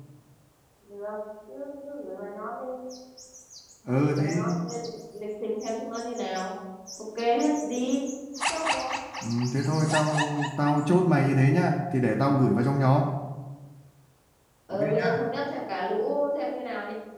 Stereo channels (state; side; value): identical; both; correlation 1.00